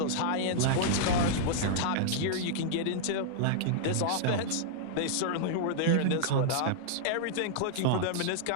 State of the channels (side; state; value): both; different; correlation -0.01